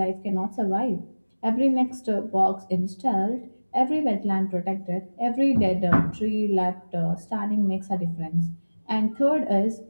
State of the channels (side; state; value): both; inverted; correlation -1.00